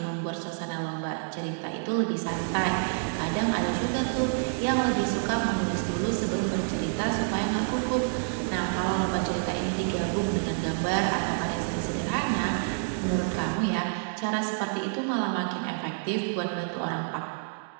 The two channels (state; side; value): silent; left; digital silence